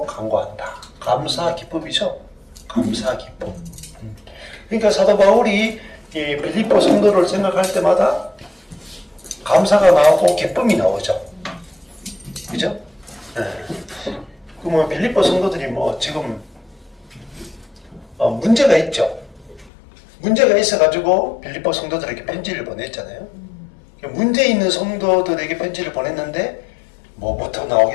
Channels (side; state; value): right; drops out; at 19.7 s